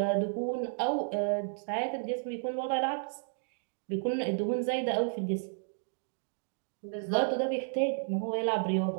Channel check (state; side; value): silent; left; digital silence